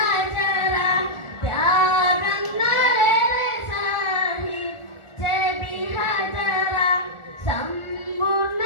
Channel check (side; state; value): right; late; 1.4 ms